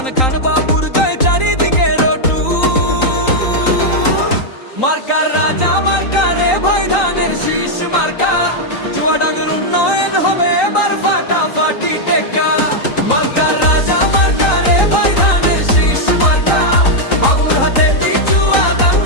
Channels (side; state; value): right; late; 3.8 ms